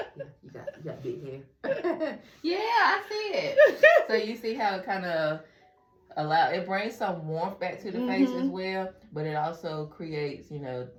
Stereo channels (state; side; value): identical; both; correlation 1.00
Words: Yeah, you got big hair. Yeah, I see it. So you see how it kind of it brings some warmth back to the face as well, but it also creates, you know,